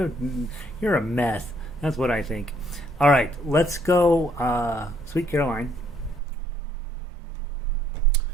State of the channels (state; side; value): drops out; left; at 6.2 s